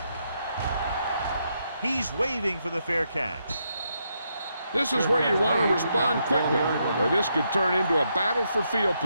He's waving for the fair catch. This is where you want to respond quickly, or this could turn into a battle for field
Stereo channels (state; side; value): inverted; both; correlation -0.79